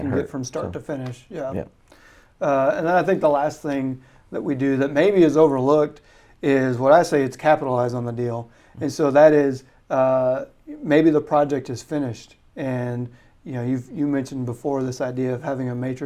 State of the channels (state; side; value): identical; both; correlation 1.00